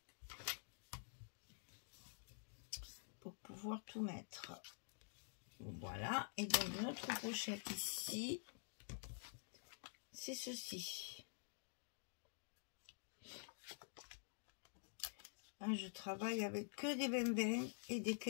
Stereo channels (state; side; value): silent; right; digital silence